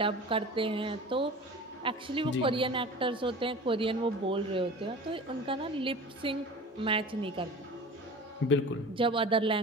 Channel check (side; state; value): both; normal; correlation 0.37